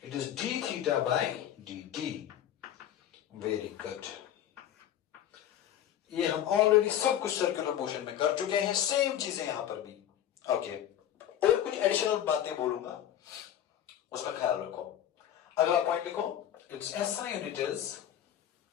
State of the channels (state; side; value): quieter; right; 10.8 dB